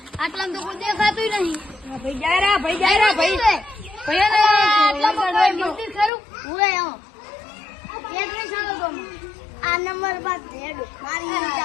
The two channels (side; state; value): right; drops out; at 6.1 s